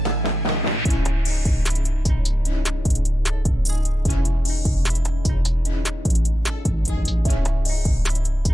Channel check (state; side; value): normal; both; correlation 0.90